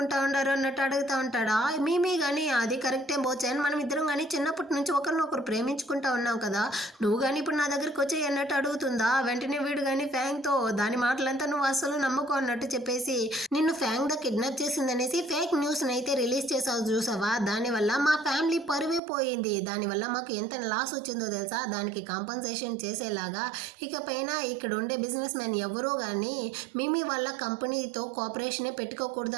ఉండారు అన్నట్టు అడుగుతూ ఉంటాడా. మేమీ కానీ అది కరెక్టే బోచాన్, మనం ఇద్దరం కానీ చిన్నప్పటి నుంచి ఒకరినొకరు ప్రేమించుకుంటా ఉన్నాం కదా, నువ్వు కానీ ఇప్పుడు నా దగ్గరికి వచ్చి అన్నట్టు అడుగుతుందా. వెంటనే వీడు కానీ ఫ్యాంక్తో దాని మాటలంతా నువ్వు అసలు నమ్మకం అన్నట్టు చెప్పేసి నిన్ను ఫ్యాంగ్ ద కిడ్నాప్ చేసిందనేసి ఫేక్ న్యూస్ అయితే రిలీజ్ చేసావు చూసావా, దానివల్ల మా ఫ్యామిలీ పరువే పోయింది, దానివల్ల మాకు ఎంత లాస్ వచ్చిందో తెలుసా, దానికి కాంపన్సేషన్ చేసేలాగా ఇకపైన ఇక్కడ ఉండే బిజినెస్ మ్యాన్ ఎవరో కానీ మీ వాళ్ళ కంపెనీతో కోఆపరేషనే పెట్టుకోకూడదు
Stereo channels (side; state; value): left; drops out; at 19.0 s